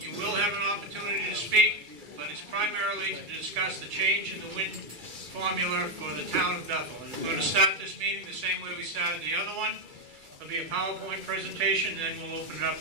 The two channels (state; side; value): late; left; 2.3 ms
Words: will have an opportunity to speak, but it's primarily to discuss the change in the wind formula for the town of Bethel. And we're going to start this meeting the same way we started the other one. There'll be a PowerPoint presentation, then we'll open it